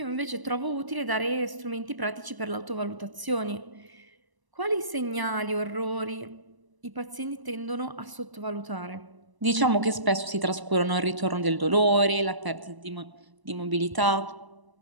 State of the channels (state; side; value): late; left; 1.0 ms